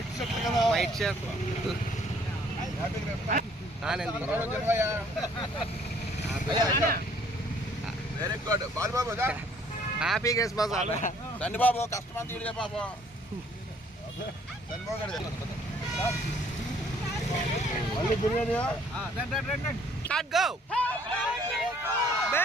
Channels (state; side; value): normal; both; correlation 0.60